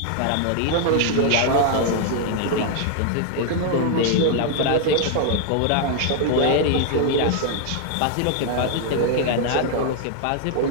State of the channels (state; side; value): different; both; correlation 0.00